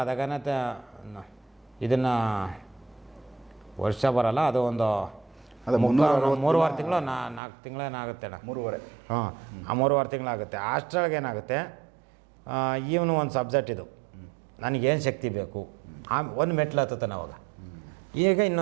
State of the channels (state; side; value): drops out; left; at 7.4 s